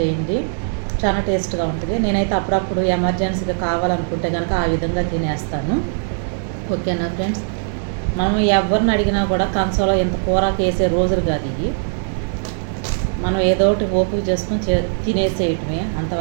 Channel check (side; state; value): left; silent; digital silence